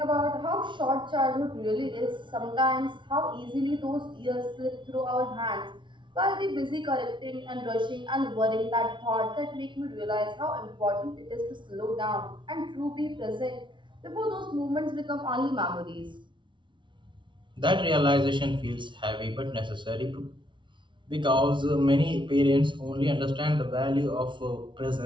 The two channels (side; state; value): left; late; 0.24 ms